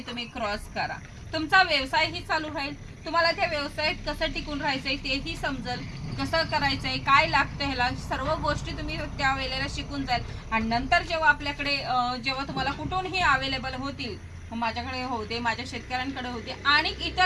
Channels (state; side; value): identical; both; correlation 1.00